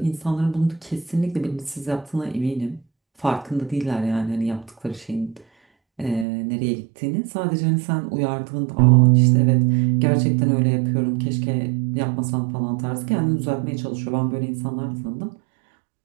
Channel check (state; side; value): drops out; left; at 6.2 s